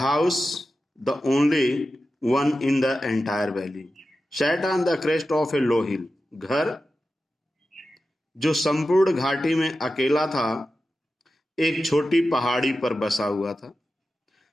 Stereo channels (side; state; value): both; normal; correlation 0.92